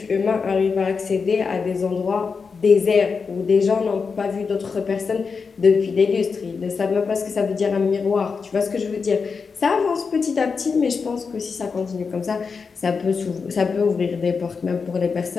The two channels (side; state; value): right; quieter; 5.2 dB